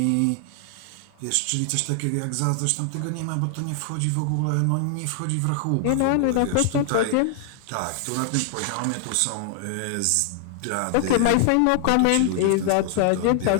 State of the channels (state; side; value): different; both; correlation 0.00